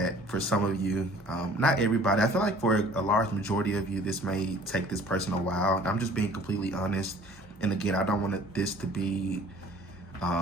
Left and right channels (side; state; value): both; normal; correlation 0.51